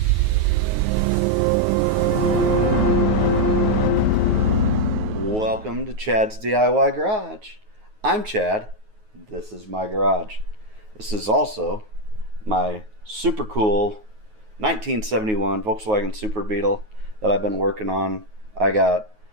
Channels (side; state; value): left; late; 9.4 ms